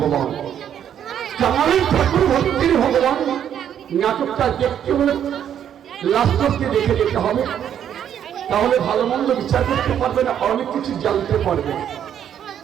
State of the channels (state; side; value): quieter; left; 9.5 dB